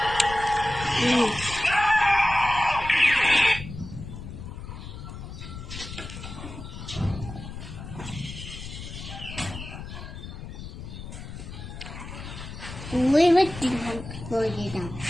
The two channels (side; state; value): left; noise; rumble, 10 dB below the sound